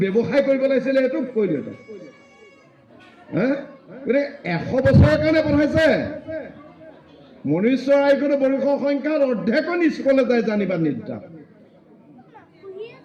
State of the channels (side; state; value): both; identical; correlation 1.00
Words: ব্যৱসায় কৰিব লাগিছিলে এইটো কৰিলো এটা গতিকে 100 বছৰৰ কাৰণে পঢ়াইছে মনুষ্য আয়ুৰ বৰ্ষৰ সংখ্যাৰ অৰ্ধেকন স্কুললৈ যায় জানিবা নিদ্ৰা